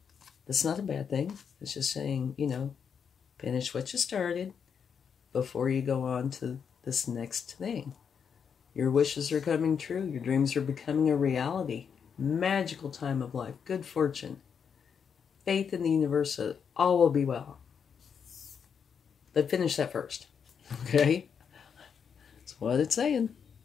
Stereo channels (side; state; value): right; quieter; 7.0 dB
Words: that's not a bad thing. It's just saying, you know, finish what you started before you go on to this next thing. Your wishes are coming true. Your dreams are becoming a reality. Magical time of life. Good fortune. Faith in the universe. All will be well. But finish that first. Okay? That's what it's saying.